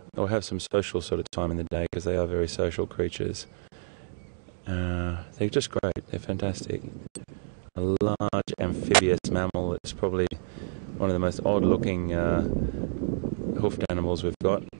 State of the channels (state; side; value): silent; left; digital silence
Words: have some social sort of time in the day, because they are very social creatures. They're just great. They're fantastic. A large amphibious mammal. It's probably one of the most odd-looking hoofed animals we've got.